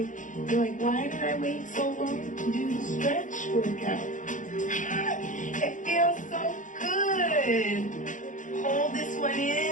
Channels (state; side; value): late; right; 0.37 ms